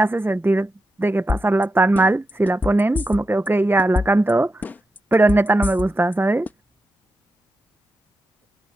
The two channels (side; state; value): both; normal; correlation 0.88